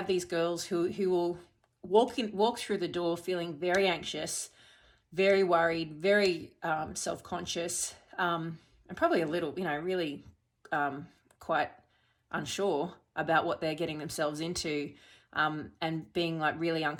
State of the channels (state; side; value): identical; both; correlation 1.00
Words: these girls who will walk through the door feeling very anxious, very worried, very self-conscious, and probably a little, really quite unsure about what they're getting themselves into, and being like really